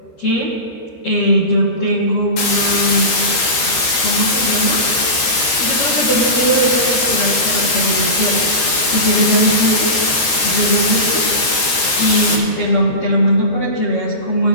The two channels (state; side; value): late; right; 13 ms